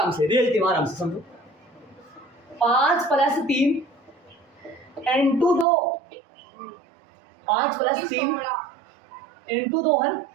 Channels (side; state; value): left; drops out; at 5.7 s